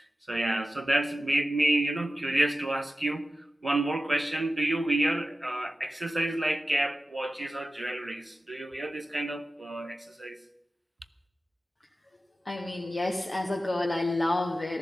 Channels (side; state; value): both; normal; correlation 0.94